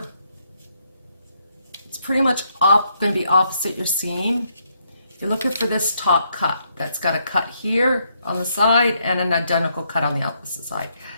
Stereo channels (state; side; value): inverted; both; correlation -0.75